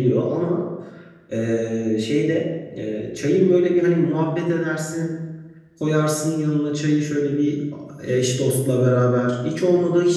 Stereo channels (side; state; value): both; identical; correlation 1.00